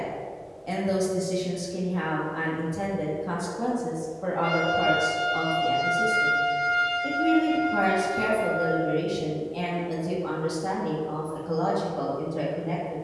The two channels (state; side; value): identical; both; correlation 1.00